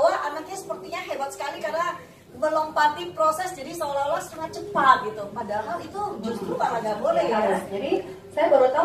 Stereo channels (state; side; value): identical; both; correlation 1.00